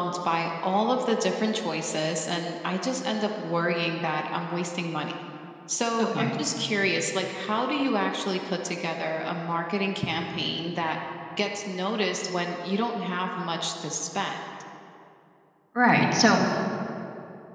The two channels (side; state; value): both; identical; correlation 1.00